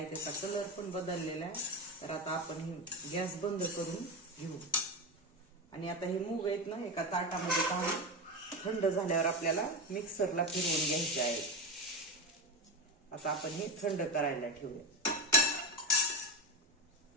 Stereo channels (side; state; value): both; normal; correlation 0.16